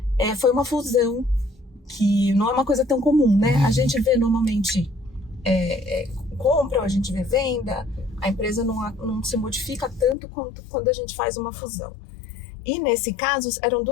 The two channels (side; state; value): right; drops out; at 10.2 s